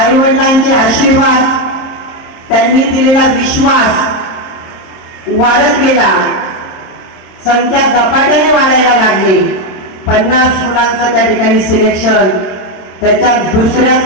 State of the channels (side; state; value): right; late; 26 ms